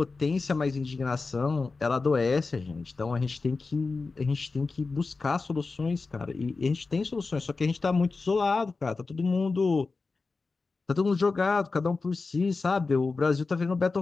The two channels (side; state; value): right; quieter; 4.0 dB